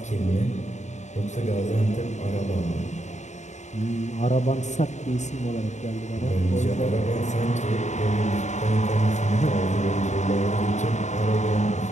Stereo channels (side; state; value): right; late; 0.34 ms